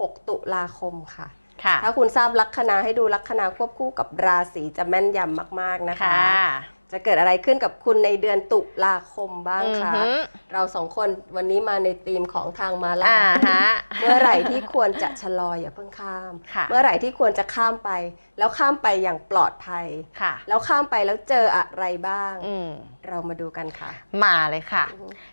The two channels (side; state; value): both; inverted; correlation -1.00